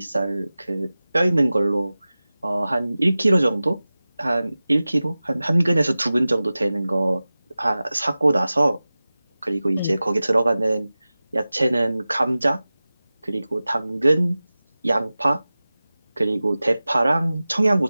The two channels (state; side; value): inverted; both; correlation -0.97